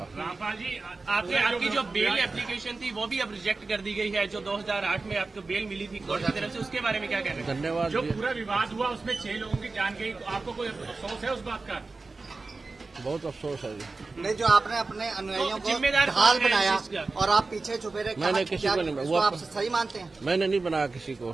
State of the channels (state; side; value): quieter; left; 3.7 dB